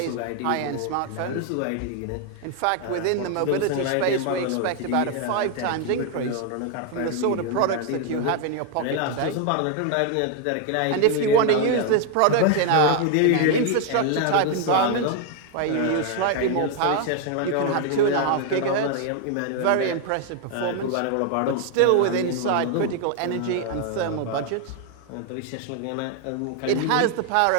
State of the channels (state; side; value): different; both; correlation 0.00